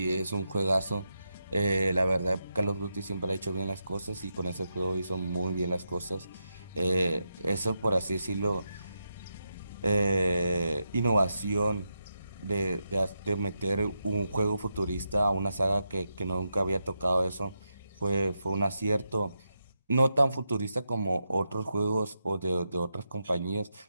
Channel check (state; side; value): inverted; both; correlation -0.86